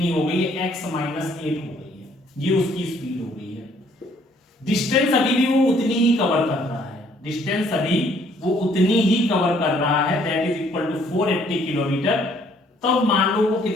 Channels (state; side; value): normal; both; correlation 0.63